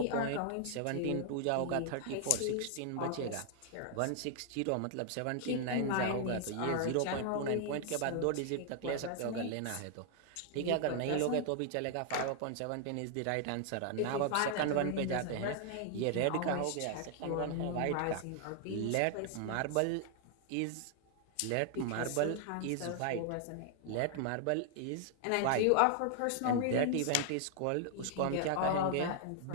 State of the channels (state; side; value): different; both; correlation 0.00